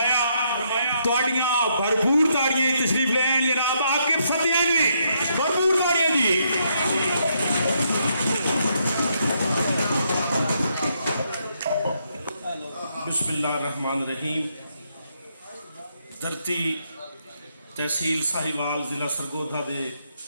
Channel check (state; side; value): inverted; both; correlation -0.76